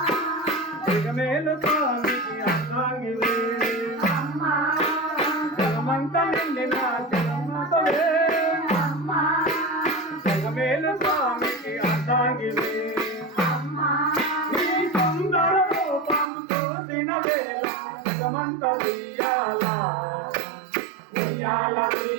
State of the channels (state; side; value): drops out; left; at 16.3 s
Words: జగమేలు స్వామికి అర్థాంగివే అమ్మా జగమంత నిండిన జగన్మాతవే అమ్మా జగమేలు స్వామికి అర్థాంగివే అమ్మా నీ సుందర రూపం చూసిన వేళ జగమంత ఉయ్యాల ఉయ్యాల